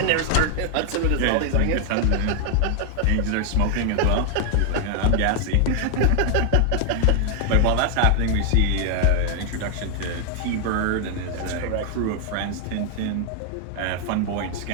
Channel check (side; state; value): both; different; correlation 0.00